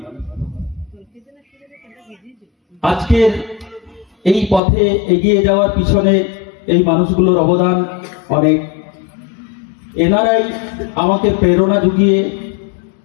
আজকের এই পথে এগিয়ে যাওয়ার পিছনে এই মানুষগুলোর অবদান অনেক। এনারাই আমাকে প্রেরণা জুগিয়ে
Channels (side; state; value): right; drops out; at 4.6 s